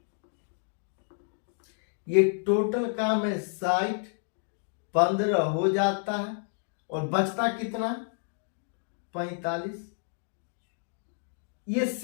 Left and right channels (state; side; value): silent; right; digital silence